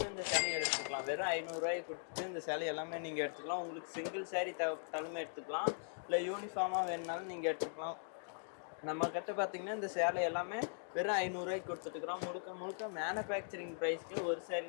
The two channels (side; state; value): right; silent; digital silence